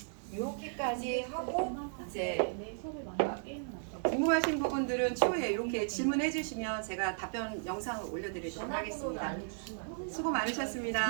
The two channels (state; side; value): silent; left; digital silence